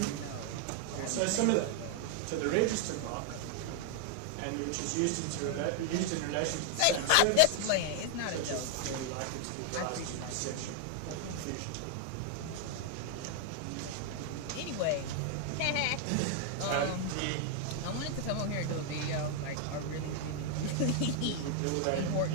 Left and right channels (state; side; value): different; both; correlation 0.00